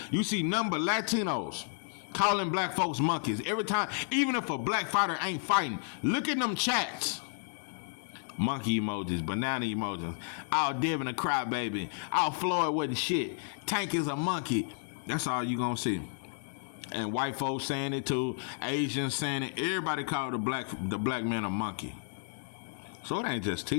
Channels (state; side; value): silent; right; digital silence